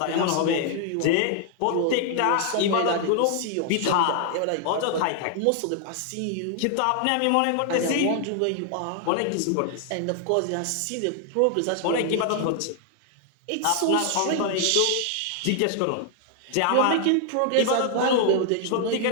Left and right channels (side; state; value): both; different; correlation 0.00